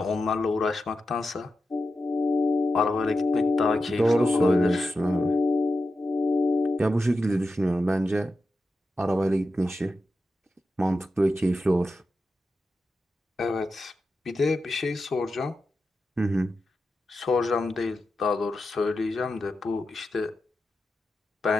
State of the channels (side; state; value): both; normal; correlation 0.90